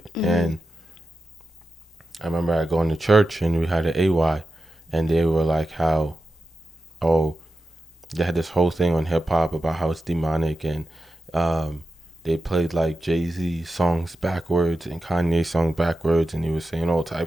Mm-hmm. And I remember I going to church and we had an AY, and they were like how, oh, they had this whole thing on hip hop about how it's demonic, and they played like Jay-Z songs backwards and Kanye songs backwards, and he was saying all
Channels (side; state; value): both; normal; correlation 0.91